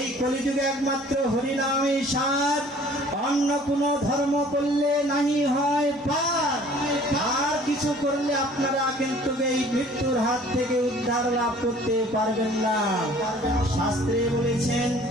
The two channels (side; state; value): both; normal; correlation 0.52